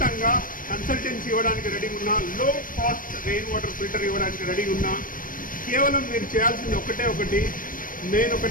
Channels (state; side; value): late; right; 0.40 ms